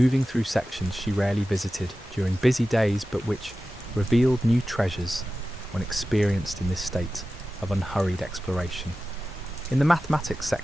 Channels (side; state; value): both; normal; correlation 0.94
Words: through sections she rarely visited during busy days but which revealed new treasures when experienced in this state of unhurried exploration. In the mathematics